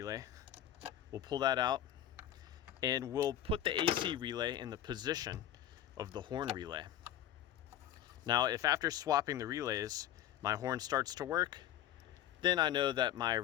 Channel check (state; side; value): quieter; right; 11.4 dB